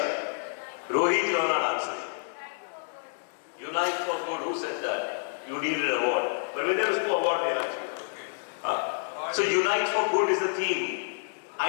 Rohit, you are not answering. Unite for Good, who said that? You need an award. But when there is no award, they are. So Unite for Good is the theme.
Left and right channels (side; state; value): right; silent; digital silence